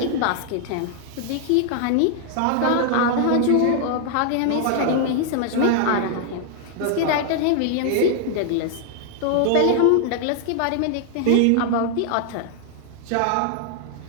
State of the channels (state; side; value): different; both; correlation 0.00